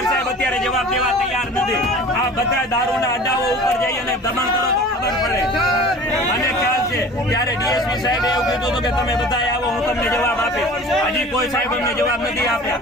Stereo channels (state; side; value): normal; both; correlation 0.42